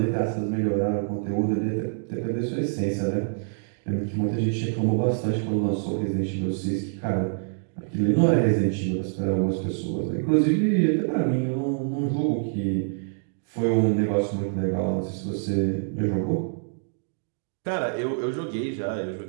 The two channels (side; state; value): left; silent; digital silence